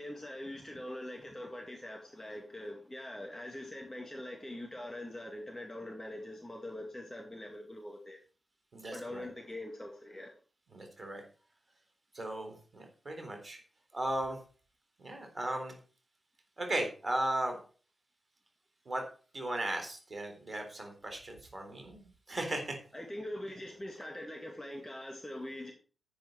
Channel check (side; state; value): both; normal; correlation 0.93